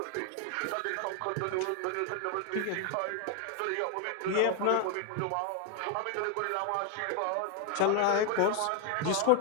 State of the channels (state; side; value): different; both; correlation 0.01